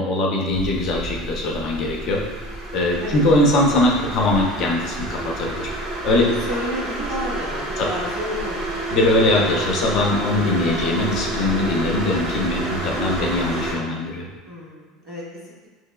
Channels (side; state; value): both; normal; correlation 0.35